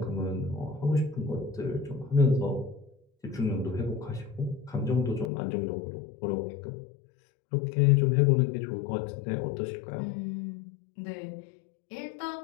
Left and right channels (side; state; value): right; drops out; at 5.2 s